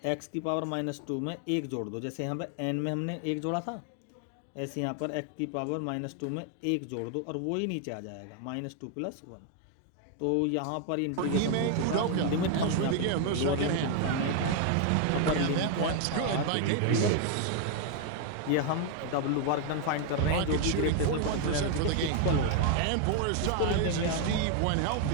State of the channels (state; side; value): different; both; correlation 0.00